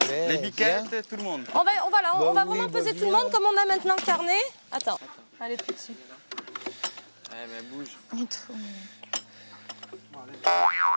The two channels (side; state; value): both; inverted; correlation -1.00